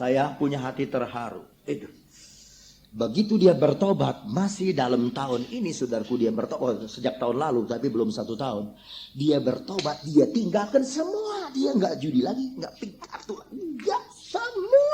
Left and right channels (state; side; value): identical; both; correlation 1.00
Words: punya hati terharu. Itu. Begitu dia bertobat, masih dalam tahun ini saudaraku dia bertobat, sejak tahun lalu tapi belum 1 tahun. Dia bertobat, dia tinggalkan semua. Dia nggak judi lagi, nggak pick kartu, nggak,